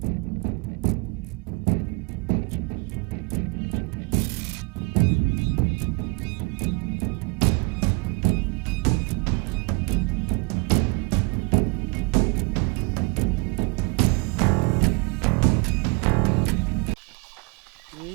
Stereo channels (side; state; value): left; quieter; 30.8 dB